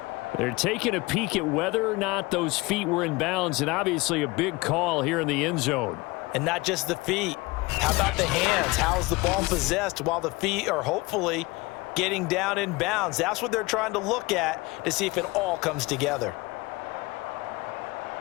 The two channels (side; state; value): right; quieter; 23.1 dB